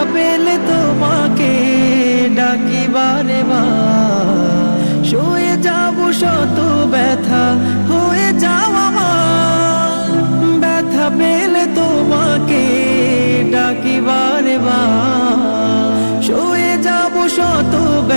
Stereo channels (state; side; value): inverted; both; correlation -1.00